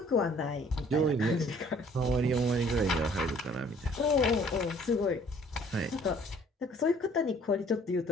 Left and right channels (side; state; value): both; normal; correlation 0.57